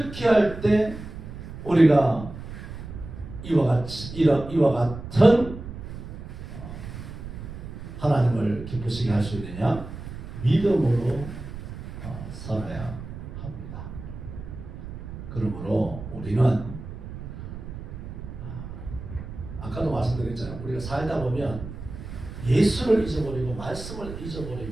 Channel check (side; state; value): right; noise; rumble, 10 dB below the sound